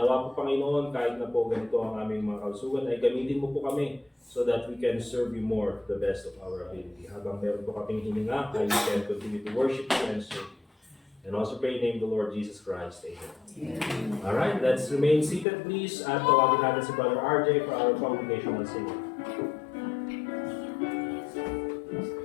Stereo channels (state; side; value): drops out; right; at 15.5 s